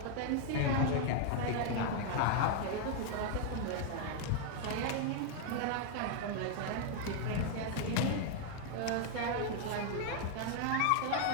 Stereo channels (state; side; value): different; both; correlation 0.00